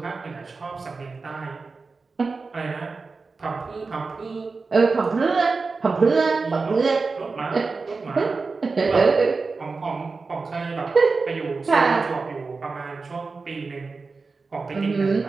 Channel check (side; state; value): left; quieter; 4.2 dB